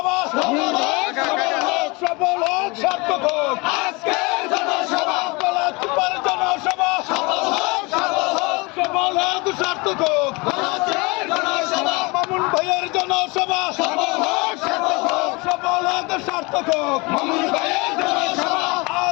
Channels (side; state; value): right; quieter; 26.6 dB